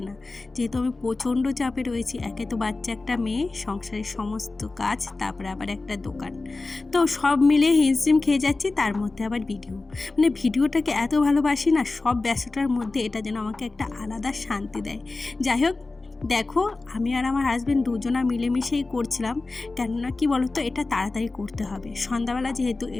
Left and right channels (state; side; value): quieter; right; 3.4 dB